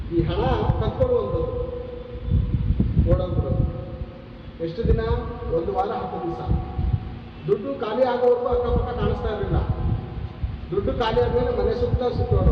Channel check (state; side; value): identical; both; correlation 1.00